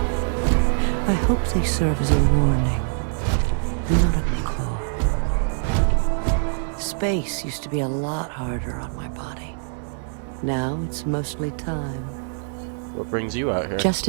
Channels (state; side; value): silent; left; 63 dB below the other